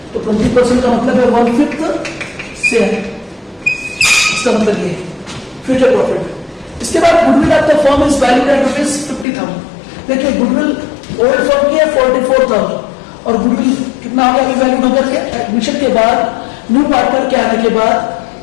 तो 20% का मतलब है 1/5 शेयर, इसका मतलब ये फ्यूचर प्रॉफिट। इसके बाद goodwill of the firm is valued at ₹50,000। देखिए, गुडविल ओल्ड फर्म की है 44,000 और गुडविल कितना हो गया अभी वैल्यूड होकर के एडमिशन के बाद, न्यू पार्टनर के आने के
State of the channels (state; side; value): drops out; right; at 9.2 s